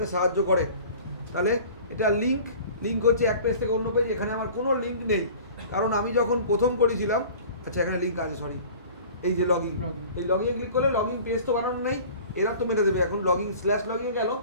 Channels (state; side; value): inverted; both; correlation -0.44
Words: সাহায্য করে। তাহলে এটা লিঙ্ক হচ্ছে এক পেজ থেকে অন্য পেজ। এখানে আমার কোনো লিঙ্ক নেই, কারণ আমি যখন প্রথম করেছিলাম, আচ্ছা এখানে লিঙ্ক আছে, সরি, এই যে লগইন, এই লগইনে ক্লিক করলে লগইন পেজ তো বানানো নেই, এরা তো মেরে দেবে। এখন লগইন /লগইন গেল,